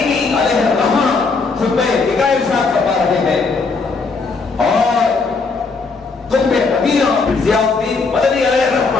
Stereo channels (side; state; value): right; quieter; 4.3 dB